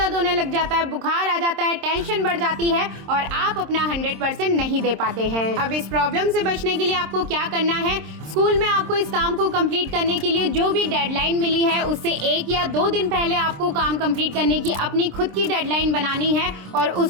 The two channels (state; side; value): late; left; 26 ms